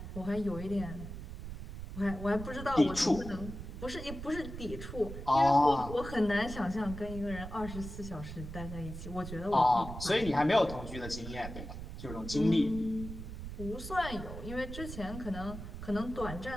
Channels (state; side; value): noise; right; rumble, 9 dB below the sound